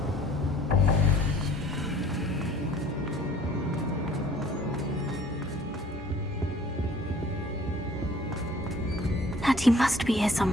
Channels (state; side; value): normal; both; correlation 0.53